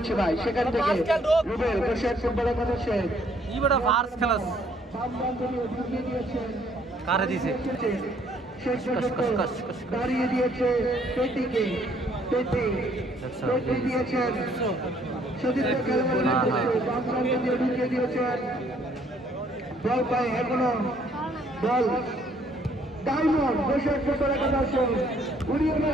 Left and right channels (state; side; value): normal; both; correlation 0.64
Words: ভাই সেখান থেকে রুবেল বসে ফুটবল একাদশে ই বড় ফার্স খেলাস ঢুকিয়ে দিয়েছেন কারে দিছে দাঁড়িয়ে দিয়েছে পেটিকে পেটি দিয়েছেন সতীর্থ খেলোয়াড় ঢুকিয়ে দিয়েছেন বল পায় এখনো বল ডায়মন্ড বসে ফুটবল একাদশ উড়িয়ে